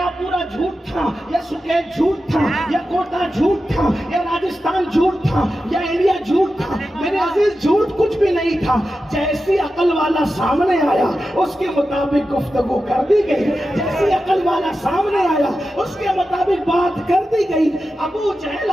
پورا جھوٹ تھا یا سکیت جھوٹ تھا یا کوٹا جھوٹ تھا یا راجستھان جھوٹ تھا یا انڈیا جھوٹ تھا. میرے عزیز جھوٹ کچھ بھی نہیں تھا. جیسی عقل والا سامنے آیا اس کے مطابق گفتگو کر دی گئی. جیسی عقل والا سامنے آیا اس کے مطابق بات کر دی گئی. ابو جہل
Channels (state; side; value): normal; both; correlation 0.91